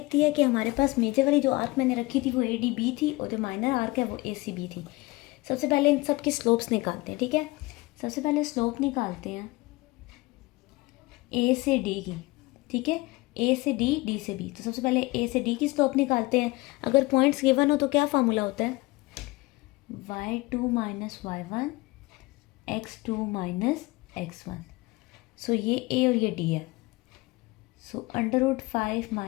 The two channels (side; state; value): right; quieter; 22.0 dB